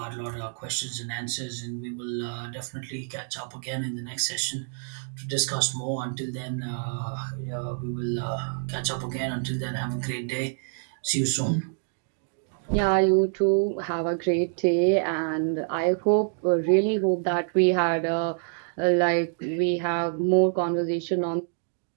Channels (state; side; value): silent; left; digital silence